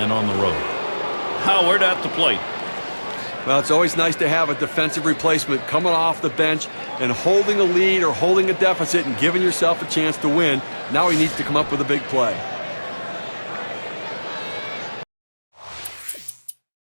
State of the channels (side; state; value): both; inverted; correlation -1.00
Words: on the road. Howard at the plate. Well, it's always nice to have a defensive replacement coming off the bench and holding a lead or holding a deficit and giving yourself a chance to win. Now he needs to come up with a big play.